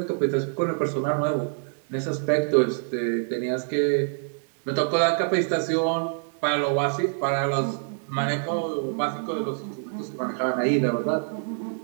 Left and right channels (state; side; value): silent; left; digital silence